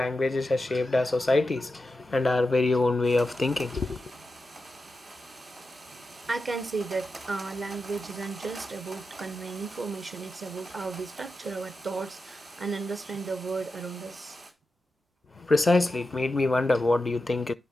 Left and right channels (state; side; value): normal; both; correlation 0.90